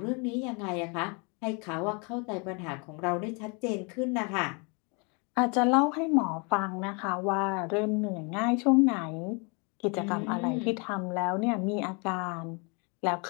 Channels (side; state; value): right; quieter; 32.9 dB